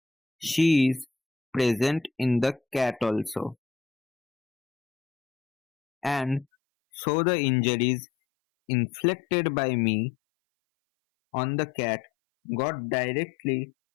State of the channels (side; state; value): right; drops out; at 6.5 s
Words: She is present in the cat also. And so the injuries inflicted by me on the cat got directly